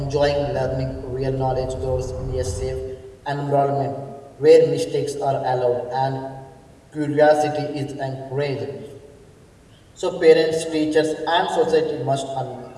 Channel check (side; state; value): both; identical; correlation 1.00